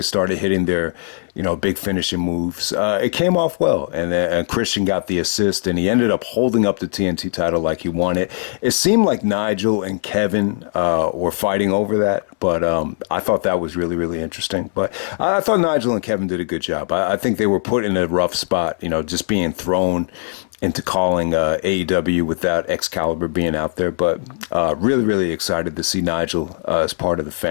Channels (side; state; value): right; silent; 63 dB below the other